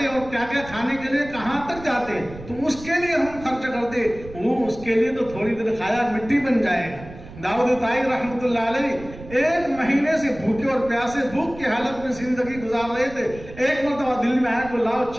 اور کیا کیا کھانے کے لیے کہاں تک جاتے، تو اس کے لیے ہم خرچ کرتے. وہ اس کے لیے تو تھوڑی دیر کھایا مٹی بن جائے گا. داؤد طائر رحمۃ اللہ علیہ 1 مہینے سے بھوکے اور پیاسے، بھوک کی حالت میں زندگی گزار رہے تھے. ایک مرتبہ دل میں آیا کہ لاؤ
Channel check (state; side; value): noise; right; rumble, 16 dB below the sound